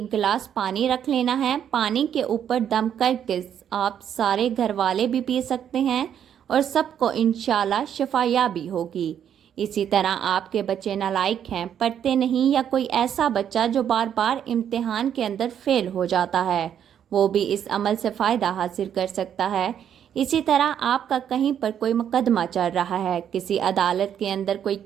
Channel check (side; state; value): left; quieter; 9.2 dB